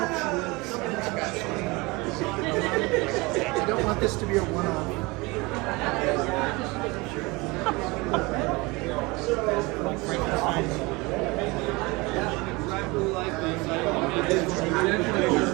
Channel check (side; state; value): left; quieter; 24.5 dB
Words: I don't want this to be a one-off.